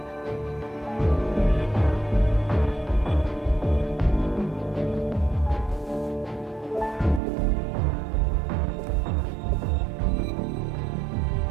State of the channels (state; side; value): drops out; left; at 7.2 s